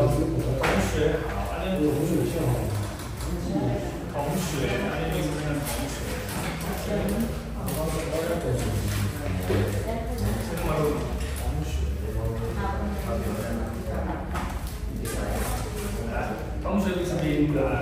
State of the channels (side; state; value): both; identical; correlation 1.00